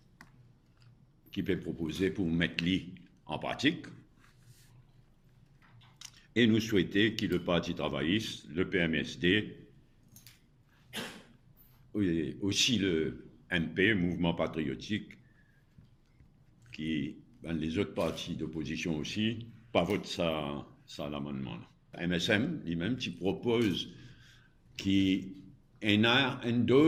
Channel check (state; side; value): identical; both; correlation 1.00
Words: qui peut proposer pour mettre l'I en pratique. Et nous souhaitons que le Parti travailliste, le PMSD, aussi le MP, Mouvement patriotique, qui, les autres partis d'opposition aussi, pas votent ça l'amendement. MSM, lui-même, qui propose qu'il y ait une